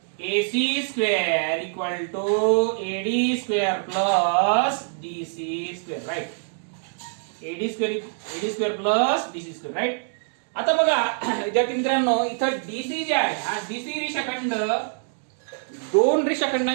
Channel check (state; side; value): silent; left; digital silence